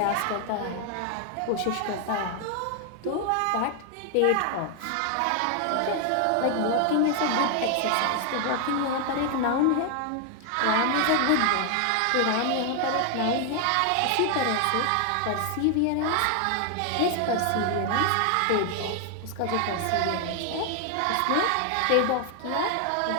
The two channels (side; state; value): both; different; correlation 0.00